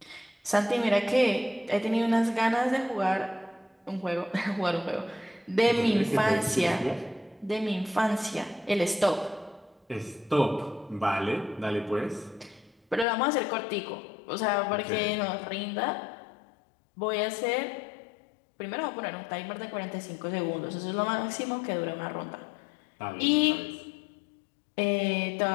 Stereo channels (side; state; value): right; drops out; at 13.1 s